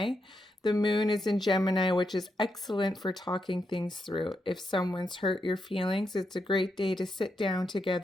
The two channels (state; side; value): normal; both; correlation 0.83